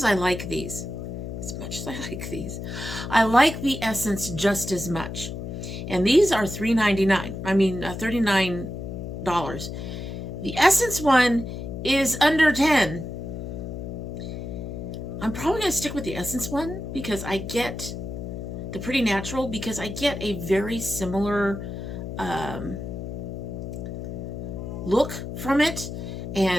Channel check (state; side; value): noise; left; hum, 7 dB below the sound